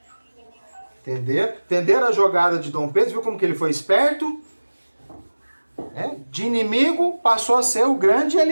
Entenderam a jogada de Dom Pedro? Viu como que ele foi esperto? De inimigo passou a ser o grande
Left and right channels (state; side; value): inverted; both; correlation -1.00